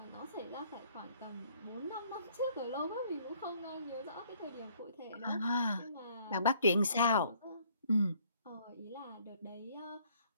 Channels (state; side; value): inverted; both; correlation -0.62